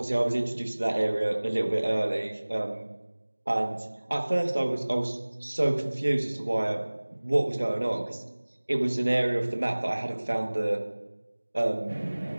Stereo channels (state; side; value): inverted; both; correlation -1.00